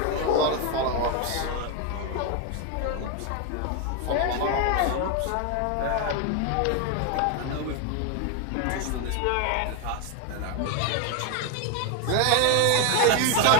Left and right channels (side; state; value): both; different; correlation 0.01